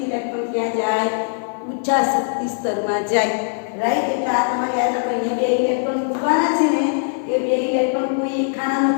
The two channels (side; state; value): right; silent; digital silence